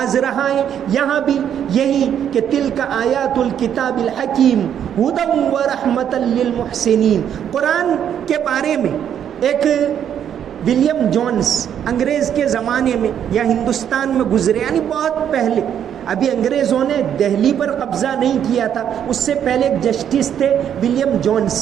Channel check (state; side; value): quieter; left; 9.2 dB